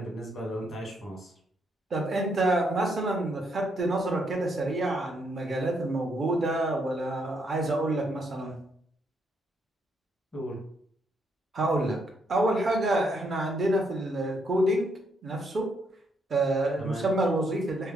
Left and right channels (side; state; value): both; normal; correlation 0.75